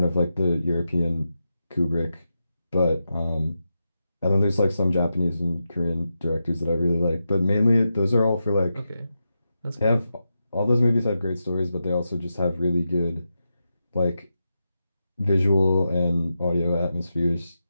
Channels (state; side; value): inverted; both; correlation -0.88